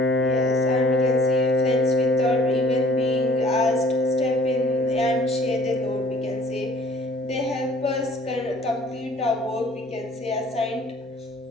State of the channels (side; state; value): both; normal; correlation 0.53